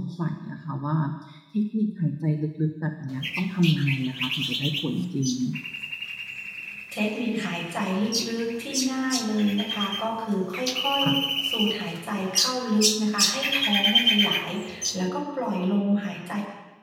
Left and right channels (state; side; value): identical; both; correlation 1.00